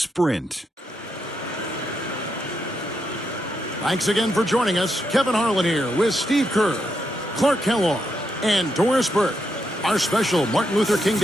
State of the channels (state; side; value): normal; both; correlation 0.82